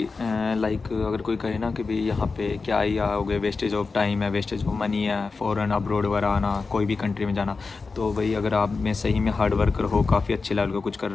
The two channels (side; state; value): right; quieter; 4.3 dB